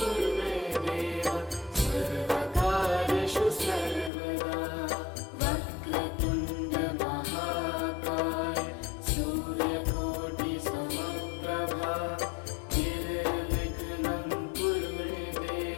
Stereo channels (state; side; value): drops out; right; at 4.1 s